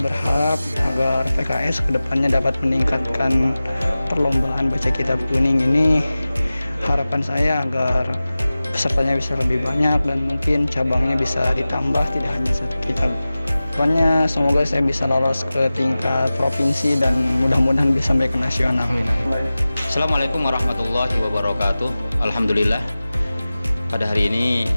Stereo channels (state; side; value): inverted; both; correlation -0.96